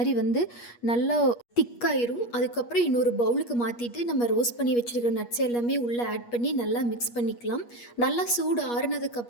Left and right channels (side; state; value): right; late; 8.4 ms